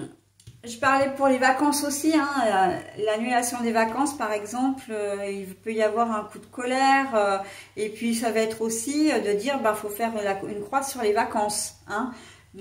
parlais pour les vacances aussi, hein, l'annulation des vacances par exemple, il peut y avoir un coup de colère, et puis ça va être aussi de dire, bah, faut faire une croix sur les vacances, hein.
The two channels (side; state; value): both; identical; correlation 1.00